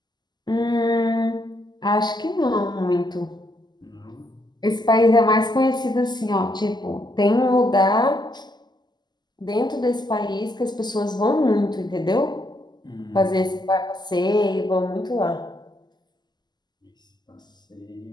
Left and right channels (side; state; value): right; late; 0.21 ms